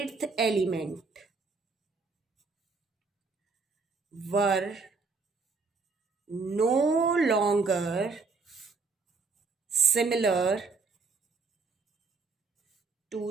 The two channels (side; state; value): left; quieter; 4.4 dB